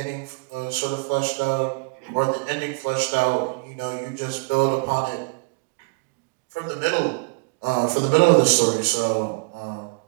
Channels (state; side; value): quieter; left; 29.2 dB